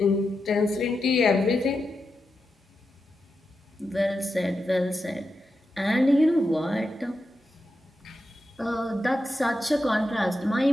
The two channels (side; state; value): both; normal; correlation 0.88